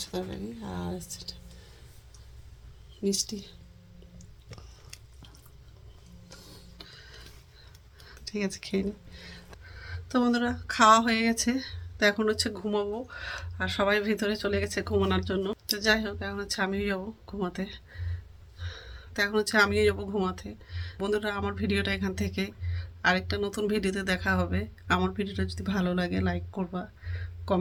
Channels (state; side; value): identical; both; correlation 1.00